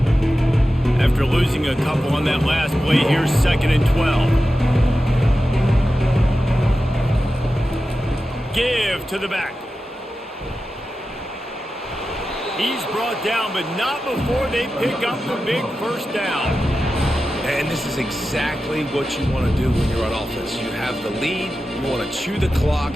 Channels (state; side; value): normal; both; correlation 0.93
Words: After losing a couple on that last play, here's second and 12. Give to the back. He's brought down, but not before they pick up the big first down. And this is exactly what you want to do when you're on offense. You have the lead, you want to chew the clock,